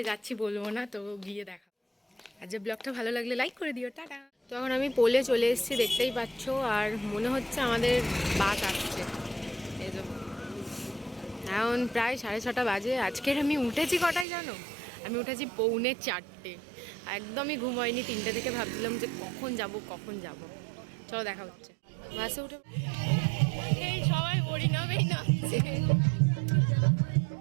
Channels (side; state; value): left; drops out; at 14.2 s